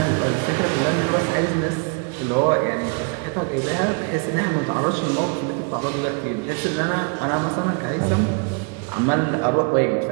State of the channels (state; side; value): quieter; left; 35.1 dB